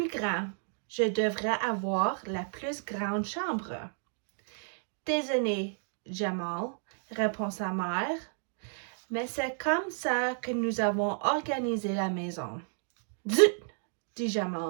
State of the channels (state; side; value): silent; left; 57 dB below the other